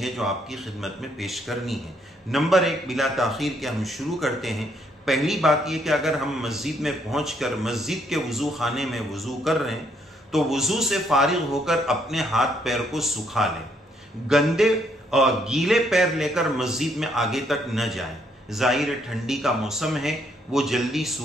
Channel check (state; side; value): normal; both; correlation 0.71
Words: जो आपकी खिदमत में पेश करनी है। नंबर 1, बिला ताख़ीर के हम शुरू करते हैं। पहली बात यह कि अगर हम मस्जिद में पहुंचकर मस्जिद के वज़ू खाने में वज़ू कर रहे हैं तो वज़ू से फारिग होकर अपने हाथ पैर को सुखा लें। गंदे और गीले पैर लेकर मस्जिद में आगे तक न जाएं। ज़ाहिर ठंडी का मौसम है, वो जल्दी